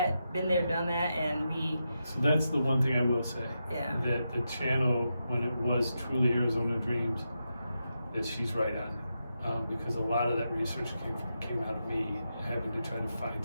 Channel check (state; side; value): inverted; both; correlation -0.87